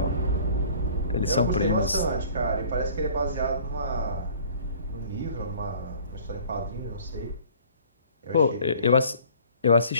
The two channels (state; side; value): inverted; both; correlation -0.51